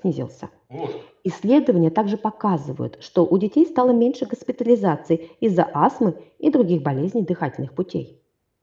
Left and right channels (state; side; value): identical; both; correlation 1.00